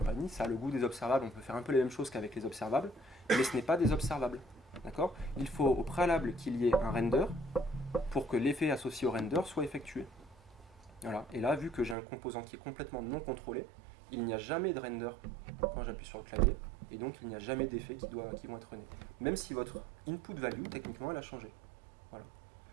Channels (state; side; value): drops out; left; at 12.0 s